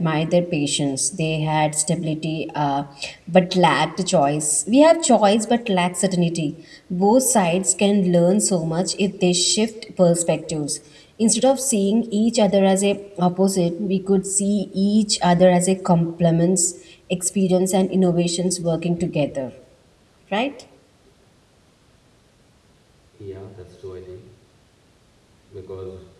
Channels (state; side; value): identical; both; correlation 1.00